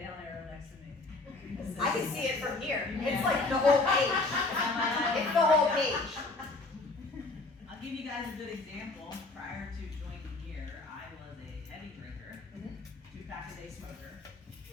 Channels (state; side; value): quieter; right; 3.3 dB